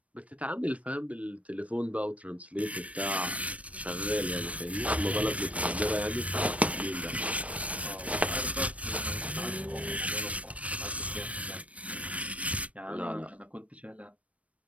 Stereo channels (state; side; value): late; left; 0.065 ms